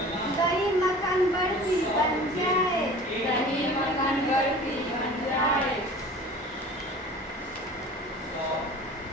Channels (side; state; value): both; normal; correlation 0.42